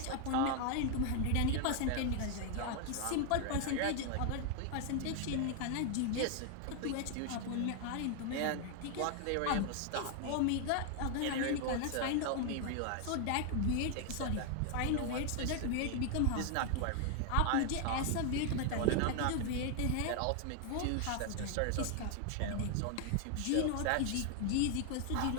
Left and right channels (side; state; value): both; different; correlation 0.00